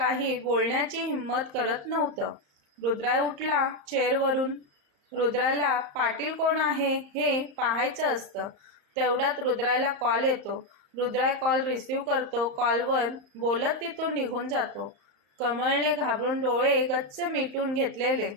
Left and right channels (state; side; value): late; left; 34 ms